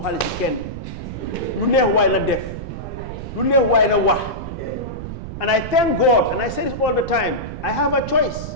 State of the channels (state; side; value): noise; right; rumble, 9 dB below the sound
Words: ken. Lu neex way la def. Lu neex way la wax. And I thank God, and I say this all the time, I have a